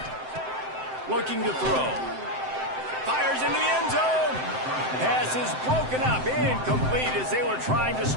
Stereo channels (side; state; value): left; late; 7.8 ms